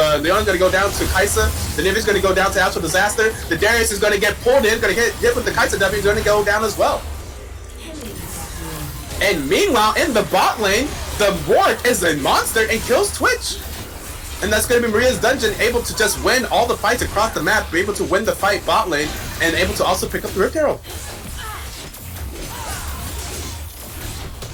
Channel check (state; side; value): identical; both; correlation 1.00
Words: Leona's going to go down to Kaisa. The Nivea's going to go down to Astral Disaster. The Darius is going to get pulled in. Going to get hit with the Kaisa W. He's going to go down as well. And meanwhile, in the bot lane, the Warwick is a monster and kills Twitch. And that's going to be Maria's Dungeon able to just win all the fights across the map, be able to win the fight bot lane, and able to also pick up the Rift Herald.